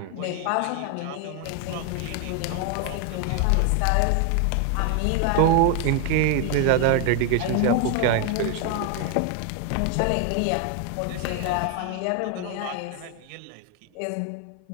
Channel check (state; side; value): different; both; correlation 0.01